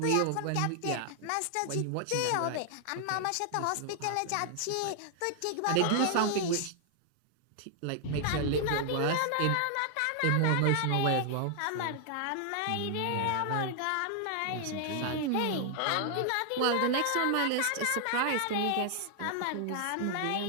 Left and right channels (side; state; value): both; different; correlation 0.00